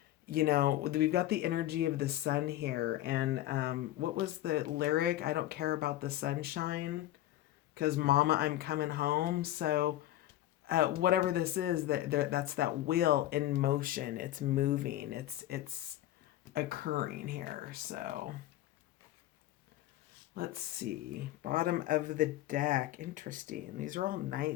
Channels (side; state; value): right; quieter; 14.3 dB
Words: we've got the energy of the sun here. And what was the lyric? I don't care about the sunshine because mama, I'm coming home. So whatever this is, that's that wheel in motion. It's moving. It's occurring here. So let's see. Bottom of the deck. Interesting. These are all